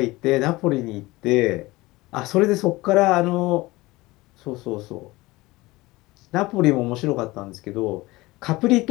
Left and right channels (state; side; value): quieter; right; 20.6 dB